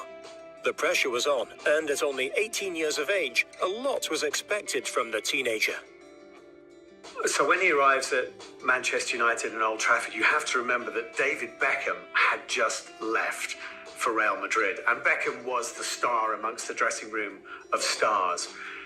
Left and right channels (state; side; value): identical; both; correlation 1.00